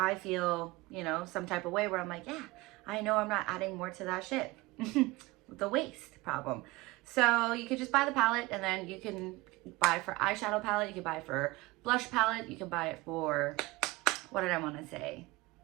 feel, you know, some type of way where I'm like, yeah, I know I'm not adding more to that shit. The waste problem. So you could just buy the palette, and then you can buy for eyeshadow palette, you can buy for blush palette, you can buy it for, what did I want to say?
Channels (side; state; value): left; quieter; 21.2 dB